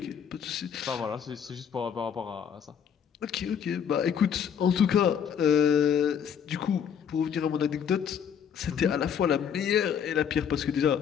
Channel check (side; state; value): right; quieter; 8.0 dB